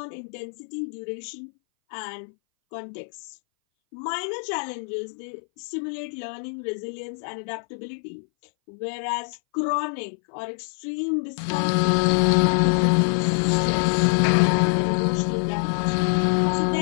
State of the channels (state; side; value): silent; right; 60 dB below the other